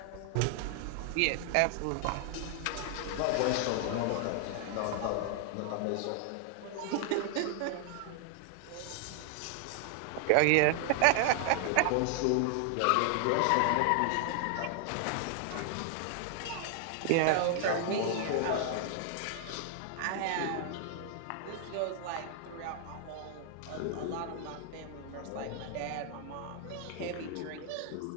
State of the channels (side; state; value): both; different; correlation 0.00